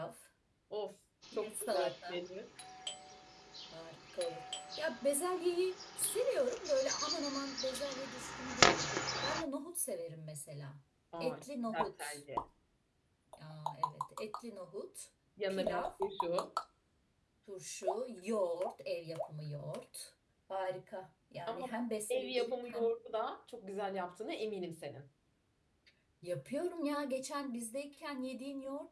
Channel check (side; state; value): both; identical; correlation 1.00